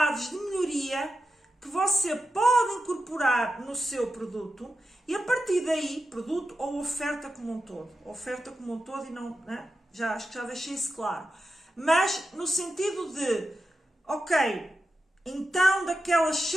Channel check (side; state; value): both; normal; correlation 0.90